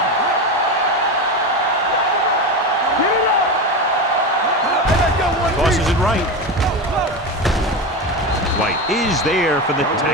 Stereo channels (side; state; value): both; normal; correlation 0.20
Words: Tosses it right. White is there for the